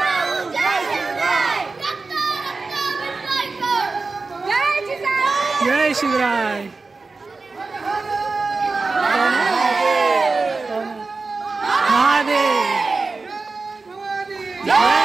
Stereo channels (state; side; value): quieter; left; 3.9 dB